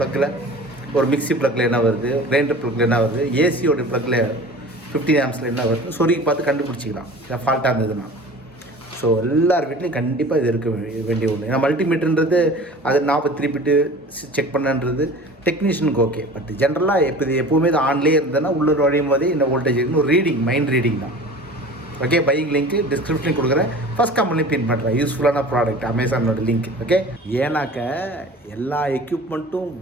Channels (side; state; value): both; normal; correlation 0.40